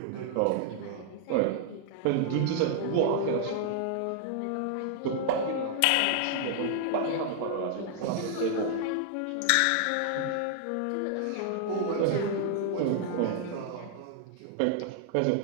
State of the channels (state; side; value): different; both; correlation -0.01